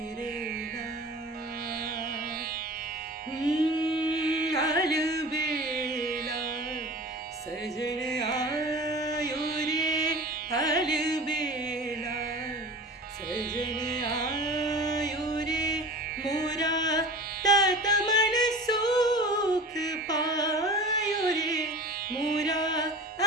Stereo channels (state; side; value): normal; both; correlation 0.37